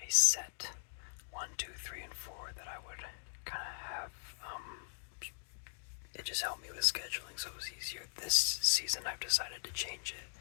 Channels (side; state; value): right; silent; digital silence